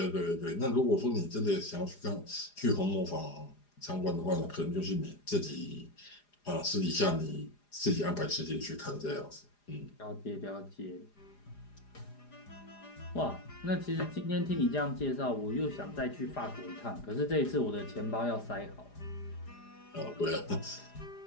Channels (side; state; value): right; late; 4.9 ms